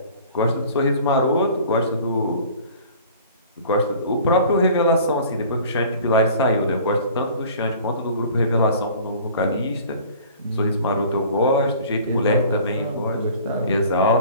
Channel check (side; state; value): both; inverted; correlation -0.47